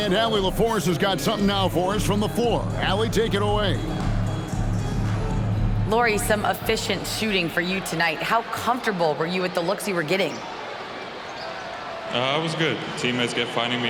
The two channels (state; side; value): identical; both; correlation 1.00